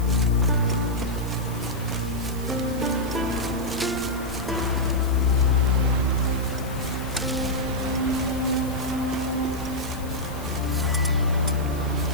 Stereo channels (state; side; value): noise; left; hiss, 17 dB below the sound